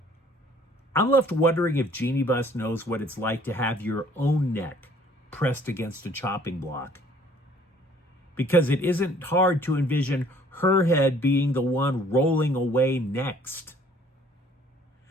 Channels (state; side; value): normal; both; correlation 0.57